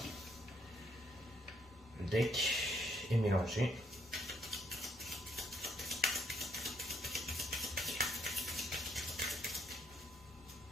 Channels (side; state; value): both; normal; correlation 0.71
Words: le deck et mélanger.